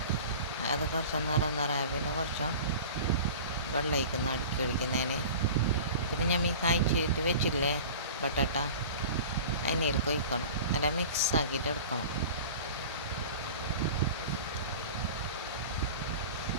അത് കുറച്ച് നിറയായ പിന്നെ കുറച്ച് വെള്ളം ഒഴിക്കുന്നു അടുക്കളിക്കുന്നതിന്. പിന്നെ ഞാൻ കായ്ച്ചിട്ട് വെച്ചില്ലേ ബട്ടട്ട, അതിനേൽക്ക് ഒഴിക്കണം. നല്ല മിക്സ് ആക്കിയിട്ട് എടുക്കണം.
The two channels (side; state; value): both; inverted; correlation -0.37